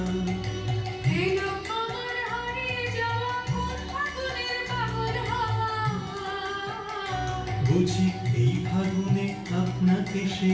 এলো আমার হারিয়ে যাওয়া কোন ফাগুনের পাগল হাওয়া। বুঝি এই ফাগুনে আপনাকে সে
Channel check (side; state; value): both; identical; correlation 1.00